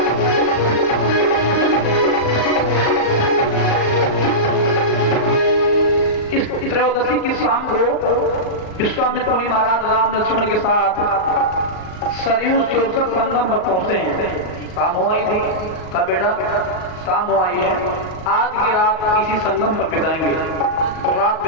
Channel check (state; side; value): late; right; 38 ms